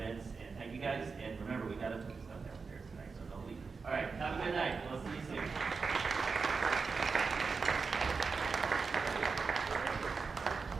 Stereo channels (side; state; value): left; quieter; 4.8 dB